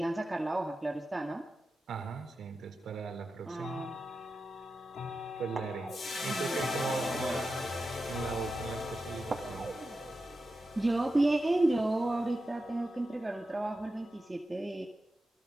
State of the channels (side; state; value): both; normal; correlation 0.91